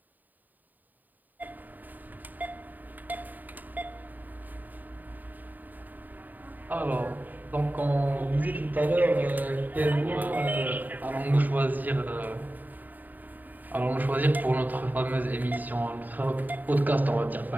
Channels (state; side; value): late; left; 0.086 ms